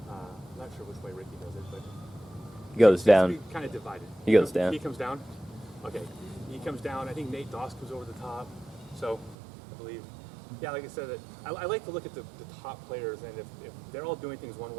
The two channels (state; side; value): drops out; left; at 9.3 s